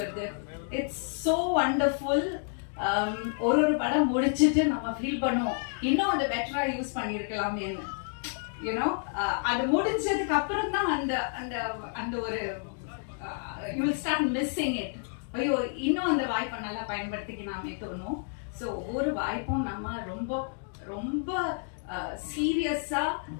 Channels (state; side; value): silent; right; 57 dB below the other